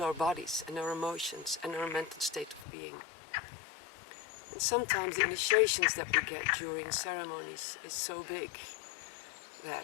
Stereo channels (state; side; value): drops out; right; at 2.7 s